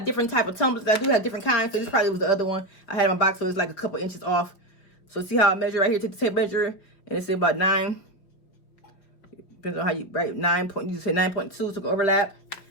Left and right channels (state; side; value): late; right; 5.4 ms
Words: different type of tumblers. I do have different kinds. So this probably was the other one I had in my box. So it's like a couple inches off. So see how I measure right here? Take the tape measure, and it's about 9. Depends on how you write 9 point. You just say 9.2. So go overlap.